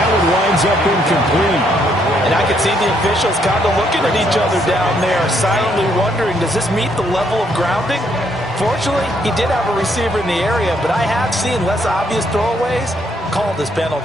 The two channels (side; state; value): both; normal; correlation 0.72